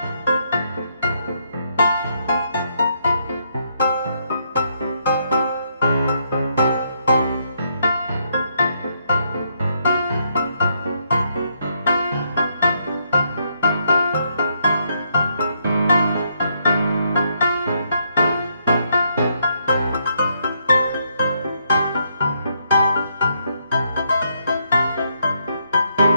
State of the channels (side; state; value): both; inverted; correlation -0.75